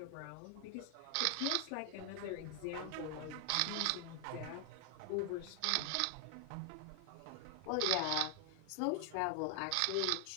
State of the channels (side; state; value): both; different; correlation 0.00